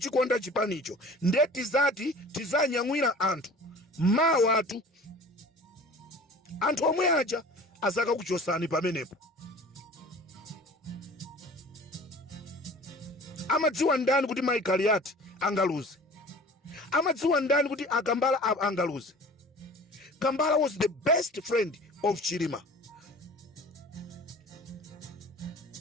chipanicho. Nde tizati tizanyamwira anthu mawa atu, anthu omwe aja azaka kuchosani pamenepo. Amadziwa ndani kuti Michael Yati angaluze? Amadziwa ndani kuti Akambala angaluze? Kambala was the best friend of Chilima.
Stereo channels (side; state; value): both; normal; correlation 0.44